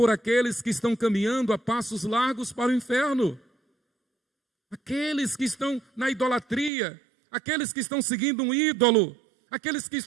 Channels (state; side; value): drops out; left; at 6.7 s